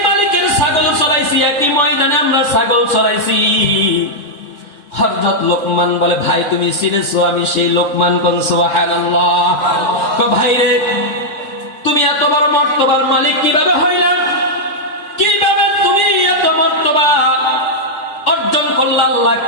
মালিকের ছাগল চড়াইছি, একই ময়দানে আমরা ছাগল চড়াইছি? হযরত লোকমান বলে, ভাই তুমি চিনেছো, আমি সেই লোকমান। কোন সুবহানাল্লাহ। ভাই রে, তুমি এত বড় মর্তবার মালিক কিভাবে হইলা? কিভাবে তুমি এত মর্তবা অর্জন করলা? আল্লাহ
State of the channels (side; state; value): right; late; 3.6 ms